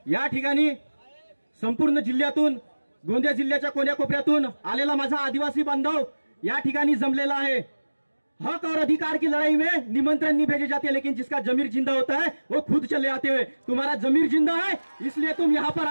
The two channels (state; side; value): inverted; both; correlation -1.00